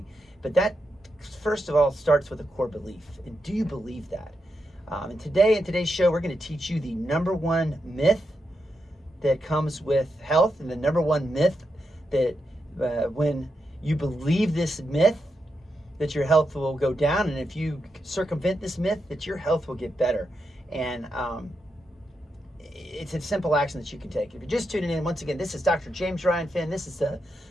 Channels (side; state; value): both; normal; correlation 0.85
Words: But that, first of all, starts with a core belief. And do you believe that? And today, in today's show, we're going to teach you the number one myth that comes with health, and the number one myth that when you believe this myth, that your health will go down, and if you circumvent this myth, that your health will get better. And it's a simple action that you can take. If you're just tuning in, once again, this is Dr. James Ryan Fenn. This is the